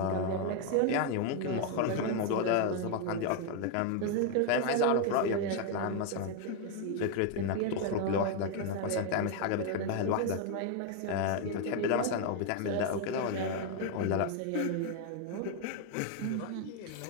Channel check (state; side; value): different; both; correlation 0.01